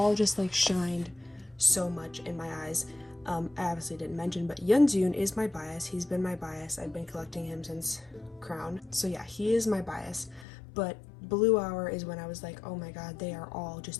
just like shined so much in my eyes. I obviously didn't mention, but Yeonjun is my bias. He's been my bias. I've been collecting him since Crown. So yeah, he is my bias. But Blue Hour is when I was like, oh my god, they are all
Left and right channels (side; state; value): right; drops out; at 10.5 s